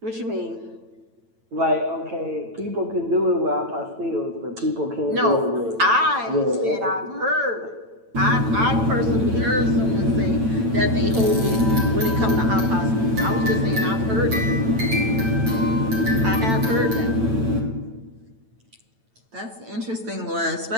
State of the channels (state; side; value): late; left; 9.0 ms